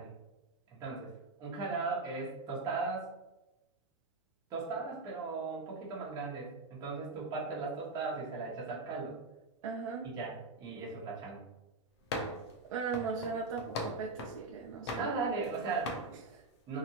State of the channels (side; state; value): left; quieter; 3.3 dB